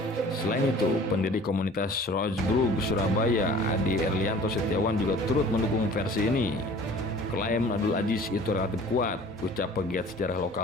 Selain itu, pendiri komunitas Rosebrug Surabaya, Adi Erlianto Setiawan juga turut mendukung versi ini. Klaim Abdul Aziz itu relatif kuat, ucap pegiat sejarah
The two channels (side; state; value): both; normal; correlation 0.47